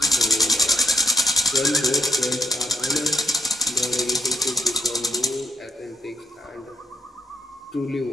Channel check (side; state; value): both; normal; correlation 0.71